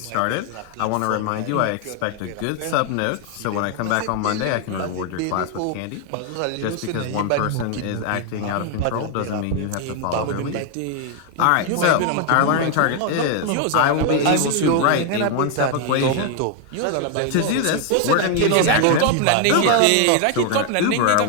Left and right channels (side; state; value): both; different; correlation 0.00